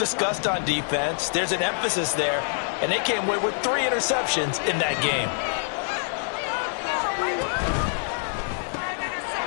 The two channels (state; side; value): silent; right; 61 dB below the other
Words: on defense. There's an emphasis there, and they came away with 3 interceptions in that game.